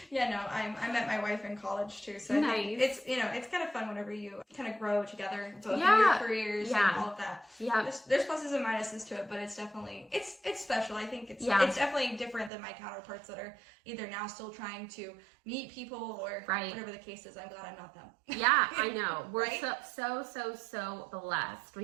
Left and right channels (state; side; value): drops out; left; at 12.5 s